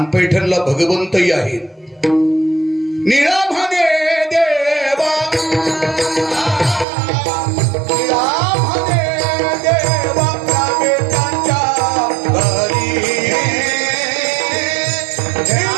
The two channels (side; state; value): left; drops out; at 6.9 s